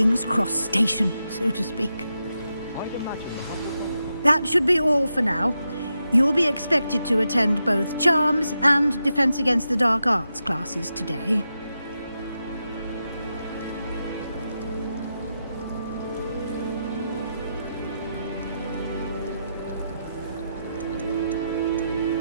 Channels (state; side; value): inverted; both; correlation -0.87